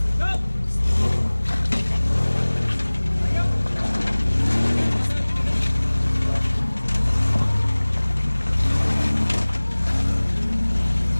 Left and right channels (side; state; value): both; inverted; correlation -1.00